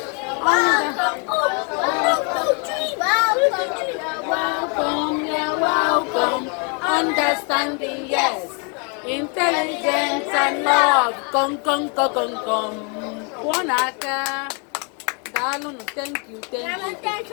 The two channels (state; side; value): quieter; right; 36.5 dB